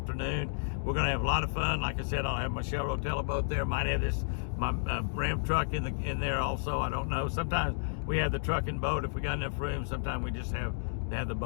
We're going to have a lot of fun. Like I said, I'll have my Shell Rotella boat there. Might have my Ram truck in there also. I don't know. Sometimes we have the truck and boat if we got enough room. Sometimes we just have the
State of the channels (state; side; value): silent; right; digital silence